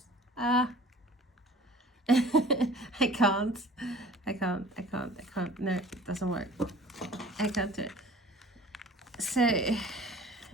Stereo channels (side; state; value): both; normal; correlation 0.46